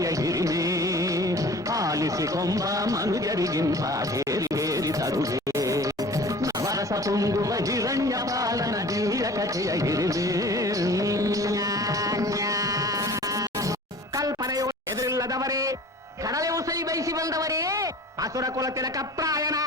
ಹಿರಿಮೆ ಆಲಿಸಿಕೊಂಬ ಮನುಜರಿಗಿಂತ ಹೇರಿ ಹೇರಿ ತರುವೆ. ನವರಸ ತುಂಬುವ ಹಿರಣ್ಯ ಪಾಲನ ದಿವ್ಯ ಕಥೆಯ ಹಿರಿಮೆ. ಕಲ್ಪನೆಯು ಎದುರಿಲ್ಲದವರೇ, ಕಡಲೆ ಉಸೈ ಬಯಸಿ ಬಂದವರೇ, ಅಸುರ ಕುಲ ತಿಲಕ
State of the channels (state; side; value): normal; both; correlation 0.43